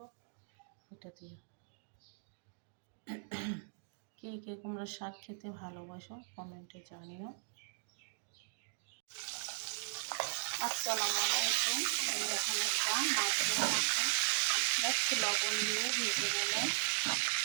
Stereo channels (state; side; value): silent; left; digital silence